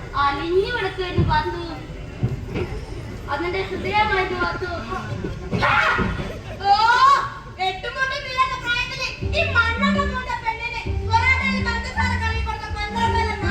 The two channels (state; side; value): identical; both; correlation 1.00